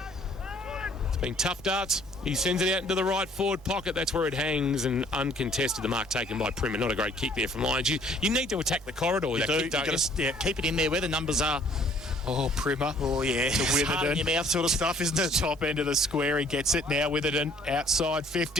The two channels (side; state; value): both; normal; correlation 0.58